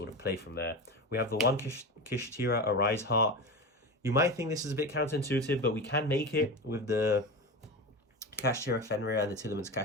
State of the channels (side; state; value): both; normal; correlation 0.24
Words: of play from there. We have the 1 Kashtira Arise Heart. You might think this is a bit counterintuitive, but we can make it with the Kashtira Fenrir and the Tearlament's